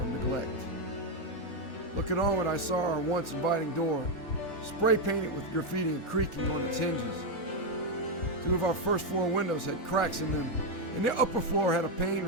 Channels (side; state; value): right; late; 3.3 ms